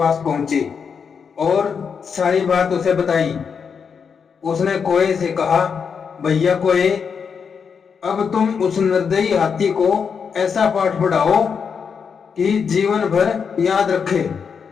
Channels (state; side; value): quieter; right; 6.4 dB